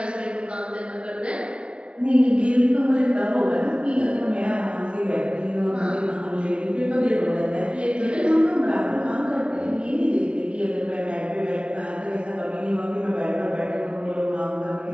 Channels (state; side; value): late; left; 0.058 ms